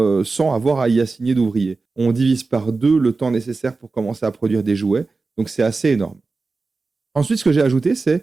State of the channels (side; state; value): left; quieter; 3.9 dB